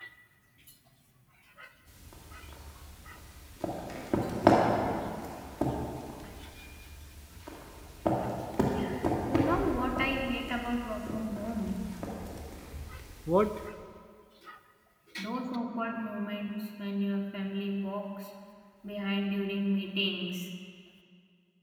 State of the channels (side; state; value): both; identical; correlation 1.00